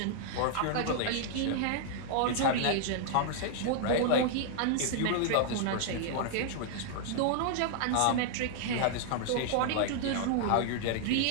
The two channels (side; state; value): both; different; correlation 0.00